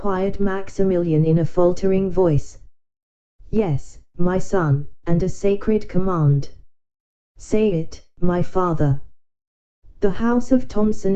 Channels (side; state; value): both; identical; correlation 1.00